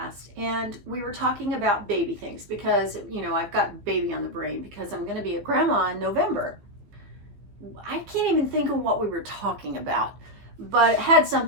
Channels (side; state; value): left; late; 15 ms